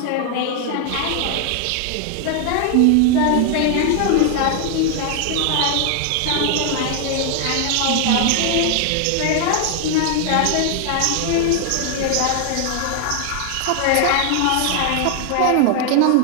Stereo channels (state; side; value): different; both; correlation 0.00